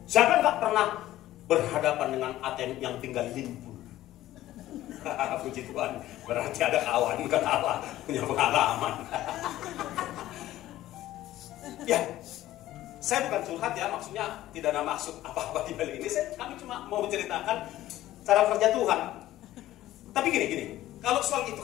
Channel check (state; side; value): quieter; right; 14.6 dB